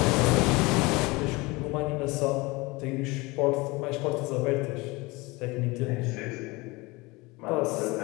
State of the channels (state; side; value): quieter; right; 23.7 dB